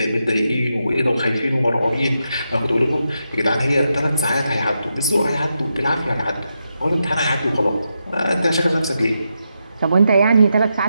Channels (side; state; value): both; inverted; correlation -0.85